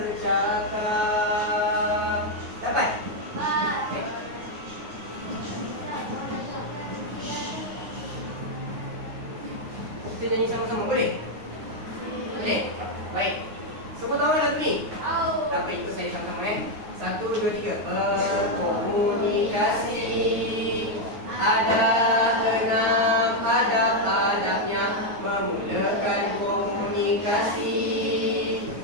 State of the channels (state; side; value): late; left; 9.5 ms